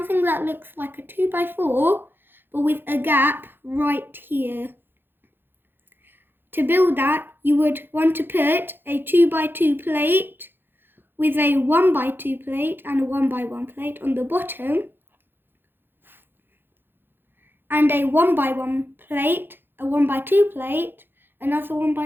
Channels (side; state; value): left; late; 0.10 ms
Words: that looks like a 2 by 4, but with a gap right here. To build that, you would want to put a 2 by 2 plate with a 1 by 2 plate and a 1 by 1 plate on the bottom, and a 1 by 1 plate, a 1 by 2 plate, another 1